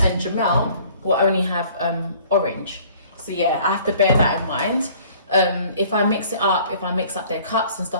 and Jamel will only have orange. So yeah, I have to bear that in mind. If I mix it up, if I mix up their cups and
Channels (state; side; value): inverted; both; correlation -0.53